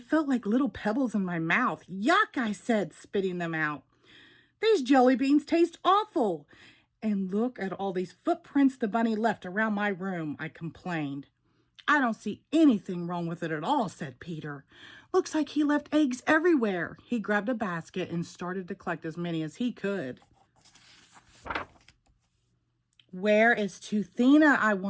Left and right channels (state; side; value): identical; both; correlation 1.00